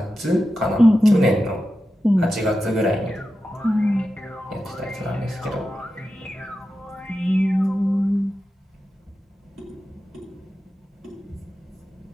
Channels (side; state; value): both; normal; correlation 0.91